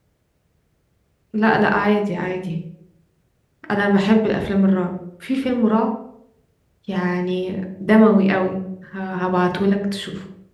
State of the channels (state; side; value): identical; both; correlation 1.00